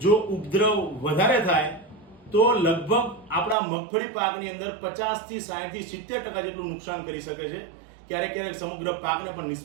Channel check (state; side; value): drops out; left; at 3.6 s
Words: જો ઉપદ્રવ વધારે થાય તો લગભગ આપણા મગફળી પાકની અંદર 50 થી 60 થી 70% જેટલું નુકસાન કરી શકે છે. ક્યારેક ક્યારેક સમગ્ર પાકને પણ